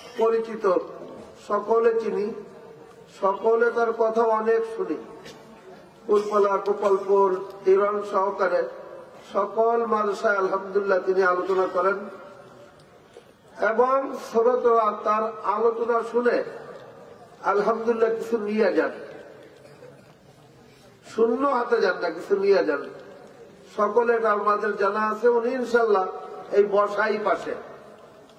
পরিচিত, সকলে চিনি, সকলে তার কথা অনেক শুনি। কুলপালা, গোপালপুর, হিরণ সহকারে সকল মাদ্রাসায় আলহামদুলিল্লাহ তিনি আলোচনা করেন এবং শ্রোতারা তার আলোচনা শুনে আলহামদুলিল্লাহ কিছু নিয়ে যান, শূন্য হাতে যান না, কিছু নিয়ে যান। সকলে আমাদের জানা আছে। উনি ইনশাল্লাহ এই বসাই পাশে,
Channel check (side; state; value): both; identical; correlation 1.00